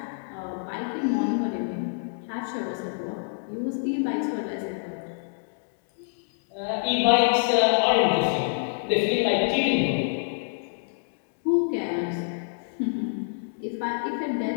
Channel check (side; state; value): right; silent; digital silence